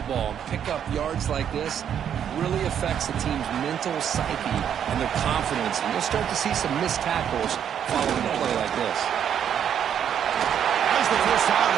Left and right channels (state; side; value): quieter; left; 8.9 dB